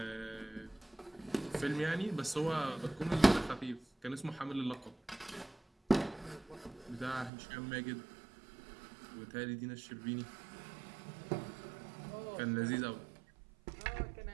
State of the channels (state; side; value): drops out; left; at 7.3 s